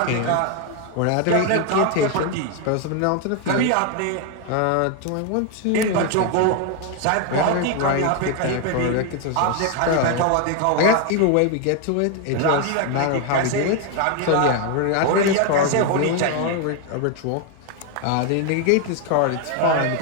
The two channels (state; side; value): different; both; correlation 0.01